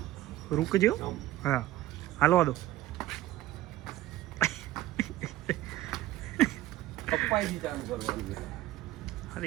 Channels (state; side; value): quieter; left; 15.1 dB